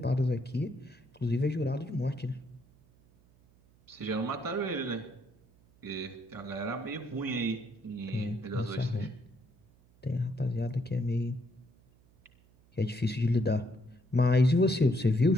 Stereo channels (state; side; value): noise; right; hum, 30 dB below the sound